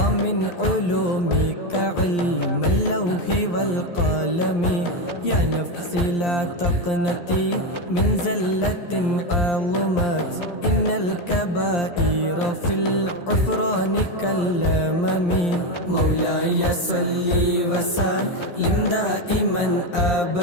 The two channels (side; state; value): right; late; 11 ms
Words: علومك علم اللوح والقلم. يا نفسي لا تقنطي من زلة عظمت إن الكبائر في العفران كالأمم. مولاي صل وسلم دائما